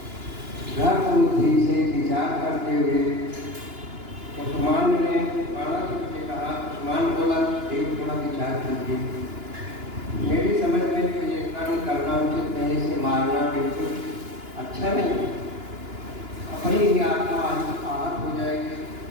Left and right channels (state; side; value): late; left; 2.9 ms